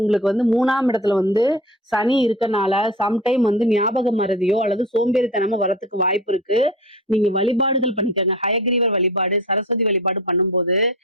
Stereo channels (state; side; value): normal; both; correlation 0.33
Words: உங்களுக்கு வந்து 3ஆம் இடத்துல வந்து சனி இருக்கனால, சம்டைம் வந்து ஞாபக மறதியோ அல்லது சோம்பேறித்தனமோ வரத்துக்கு வாய்ப்பு இருக்கு. நீங்க வழிபாடுகள் பண்ணிக்கங்க. ஹயக்கிரீவர் வழிபாடு, சரஸ்வதி வழிபாடு பண்ணும்போது,